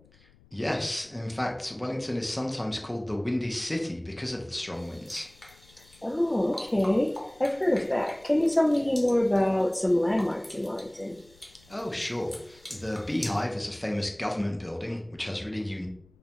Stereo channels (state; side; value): noise; left; rumble, 28 dB below the sound